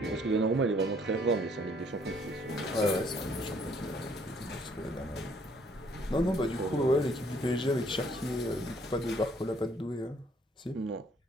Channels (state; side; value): normal; both; correlation 0.63